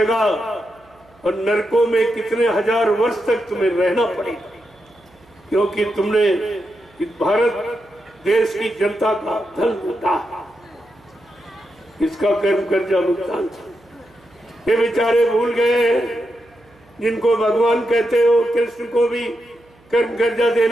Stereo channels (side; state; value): right; noise; hum, 30 dB below the sound